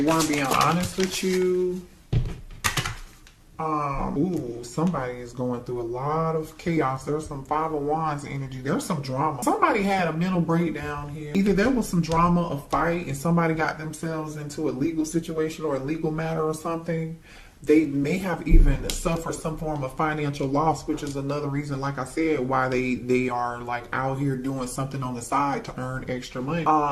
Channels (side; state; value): both; identical; correlation 1.00